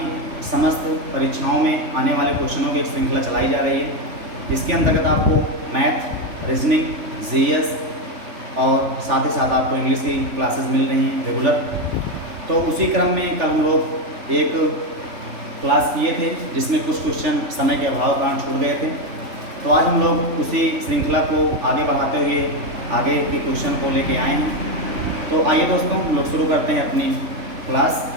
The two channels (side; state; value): left; late; 3.4 ms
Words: समस्त परीक्षाओं में आने वाले क्वेश्चनों की एक श्रृंखला चलाई जा रही है। इसके अंतर्गत आपको मैथ, रीजनिंग, जीएस और साथ ही साथ आपको इंग्लिश की क्लासेस मिल रही हैं रेगुलर। तो उसी क्रम में कल हम लोग एक क्लास किए थे जिसमें कुछ क्वेश्चन समय के अभाव के कारण छूट गए थे। तो आज हम लोग उसी श्रृंखला को आगे बढ़ाते हुए आगे के क्वेश्चन को लेके आए हैं। तो आइए दोस्तों, हम लोग शुरू करते हैं अपनी क्लास।